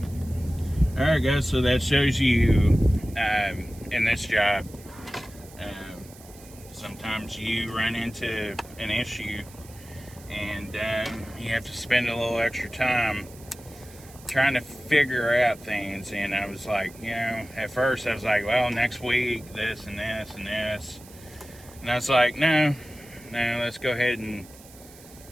Alright guys, so that shows you in this job, sometimes you run into an issue and you have to spend a little extra time trying to figure out things. And I was like, you know, at first I was like, well, next week this and this and this, and I was like, no, let's go ahead and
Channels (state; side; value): noise; right; hiss, 21 dB below the sound